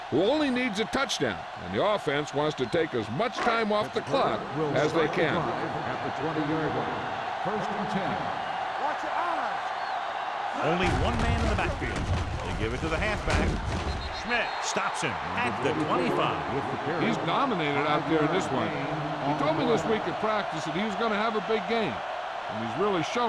who only needs a touchdown, and the offense wants to take as much time off the clock as they can. At the 20-yard line. First and 10. Watch your eyes. Only one man in the backfield. They give it to the halfback. Schmidt stops him at the 25. He's dominated out there in this one. He told me this week at practice that he was going to have a big game, and he's really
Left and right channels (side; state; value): both; identical; correlation 1.00